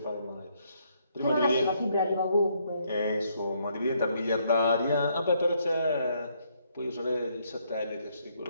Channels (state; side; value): inverted; both; correlation -0.72